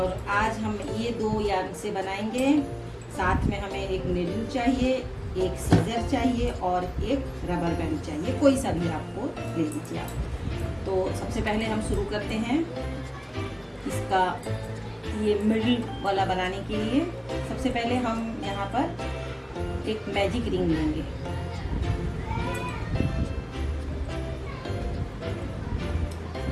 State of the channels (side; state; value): both; identical; correlation 1.00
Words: आज हम ये दो यार्न से बनाएंगे। साथ में हमें एक नीडल चाहिए, एक सीजर चाहिए और एक रबर बैंड चाहिए। कोई सा भी आपको ले लीजिए आप। तो सबसे पहले हम शुरू करते हैं इसका ये मिडिल वाला बनाने के लिए। सबसे पहले हम यहाँ पर एक मैजिक रिंग लेंगे।